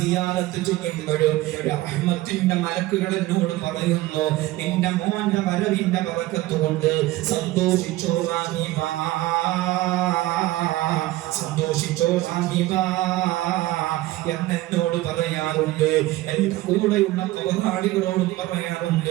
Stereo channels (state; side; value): quieter; left; 17.3 dB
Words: ചെയ്യുമ്പോഴും റഹ്മത്തിന്റെ മലക്കുകൾ എന്നോട് പറയുന്നു, നിന്റെ മോന്റെ വരവിന്റെ ബറക്കത്ത് കൊണ്ട് സന്തോഷിച്ചോ റഹീബ, സന്തോഷിച്ചോ റഹീബ എന്നോട് പറയാറുണ്ട്. എന്റെ കൂടെയുള്ള കബറാളികളോടും